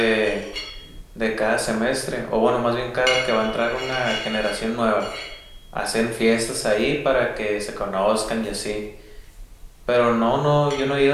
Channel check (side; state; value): both; identical; correlation 1.00